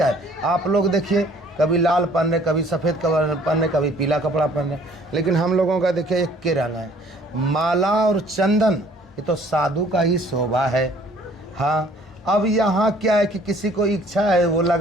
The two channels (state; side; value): normal; both; correlation 0.56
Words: है? आप लोग देखिए, कभी लाल पहन रहे, कभी सफ़ेद कपड़ा पहन रहे, कभी पीला कपड़ा पहन रहे, लेकिन हम लोगों का देखिए एक के रंग है। माला और चंदन ये तो साधु का ही शोभा है। हाँ, अब यहाँ क्या है कि किसी को इच्छा है वो